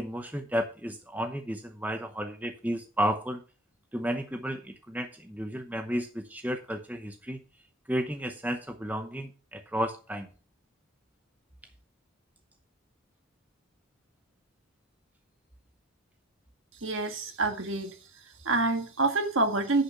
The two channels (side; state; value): both; normal; correlation 0.39